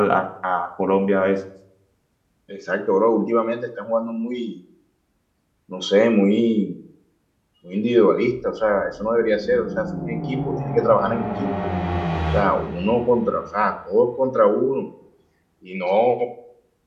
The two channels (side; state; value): both; identical; correlation 1.00